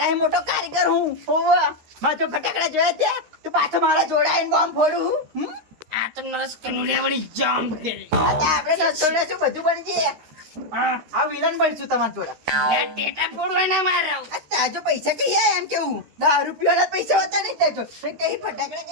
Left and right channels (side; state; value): left; late; 13 ms